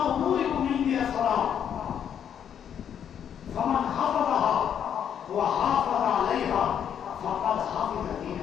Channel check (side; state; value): right; quieter; 8.8 dB